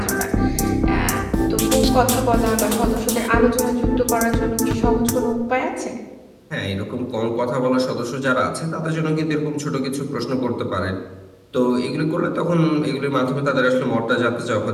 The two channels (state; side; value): identical; both; correlation 1.00